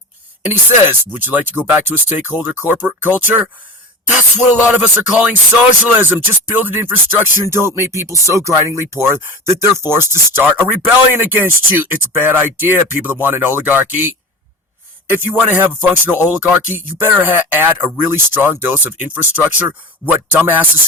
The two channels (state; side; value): normal; both; correlation 0.31